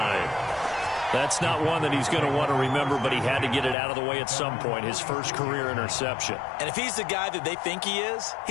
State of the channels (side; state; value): right; drops out; at 3.8 s